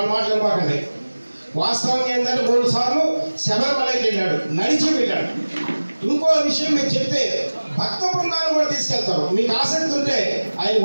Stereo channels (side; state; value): both; inverted; correlation -1.00